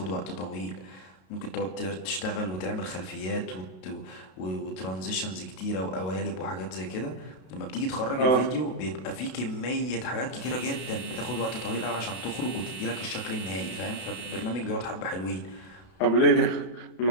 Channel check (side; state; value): right; late; 32 ms